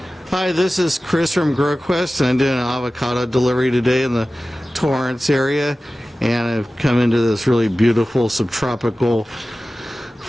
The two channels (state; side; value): normal; both; correlation 0.96